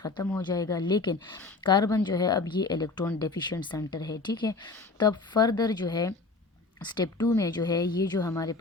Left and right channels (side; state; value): right; quieter; 3.7 dB